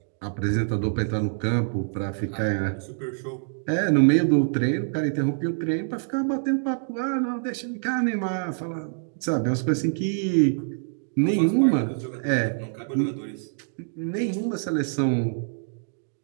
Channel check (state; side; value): silent; left; digital silence